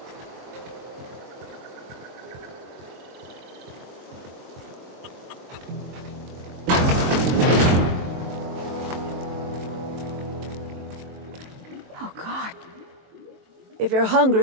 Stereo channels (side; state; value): left; late; 23 ms